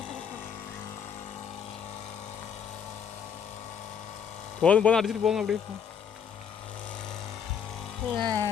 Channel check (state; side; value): quieter; right; 7.5 dB